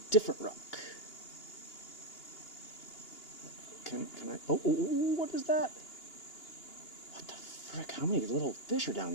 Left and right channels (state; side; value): late; right; 2.9 ms